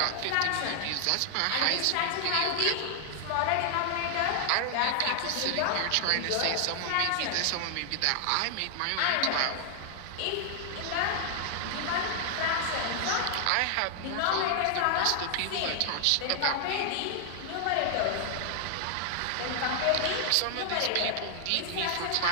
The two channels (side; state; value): both; different; correlation 0.00